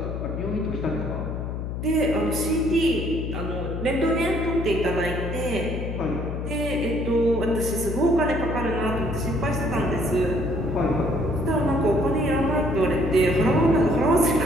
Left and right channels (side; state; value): left; noise; hum, 4 dB below the sound